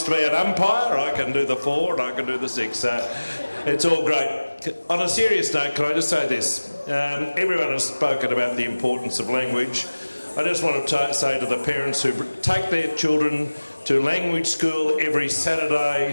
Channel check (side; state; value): both; inverted; correlation -1.00